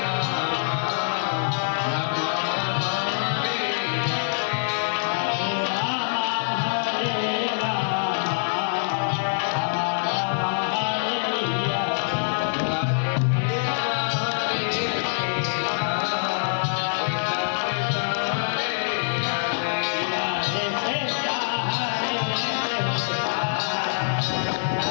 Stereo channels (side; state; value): right; silent; digital silence